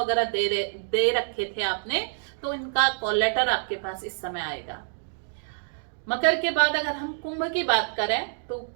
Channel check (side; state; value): left; silent; digital silence